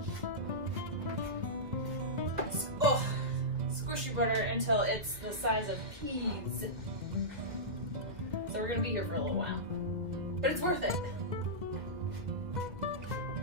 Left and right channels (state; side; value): late; left; 1.8 ms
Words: Oh, squish your butter until it's the size of peas. So we're gonna be here for a little while, but it's worth it.